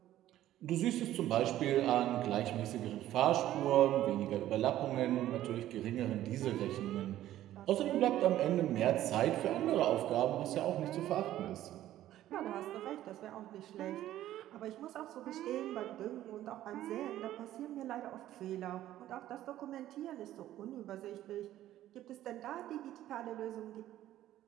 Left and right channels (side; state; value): left; quieter; 13.4 dB